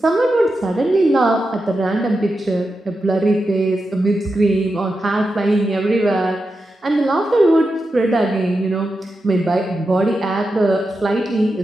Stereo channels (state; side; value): normal; both; correlation 0.89